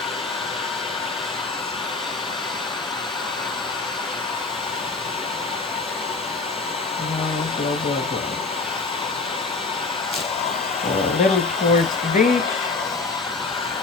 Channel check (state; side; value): quieter; right; 3.9 dB